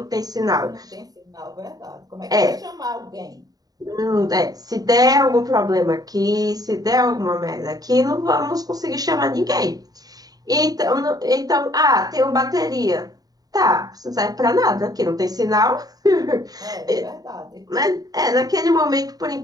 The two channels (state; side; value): late; left; 0.18 ms